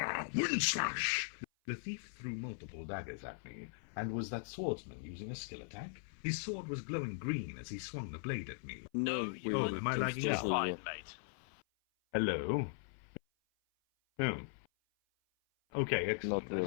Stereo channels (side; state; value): right; silent; 52 dB below the other